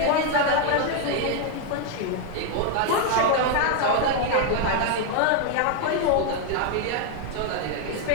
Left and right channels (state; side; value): different; both; correlation 0.00